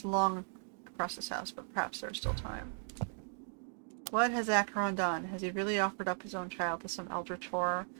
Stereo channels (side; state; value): left; silent; digital silence